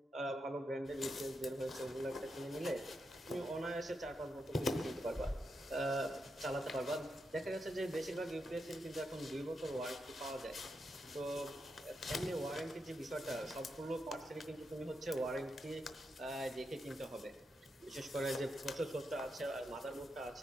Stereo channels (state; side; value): normal; both; correlation 0.84